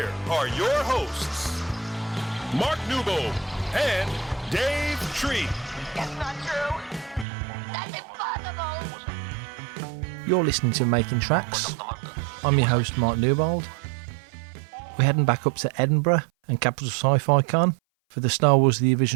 are your hosts, Mark Newbold and Dave Tree. That's not true. That's impossible. You're listening to Making Tracks. I'm your host, Mark Newbold. We're heading back up to Edinburgh and Capital Sci-Fi Con for the Star Wars The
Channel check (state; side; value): drops out; left; at 7.2 s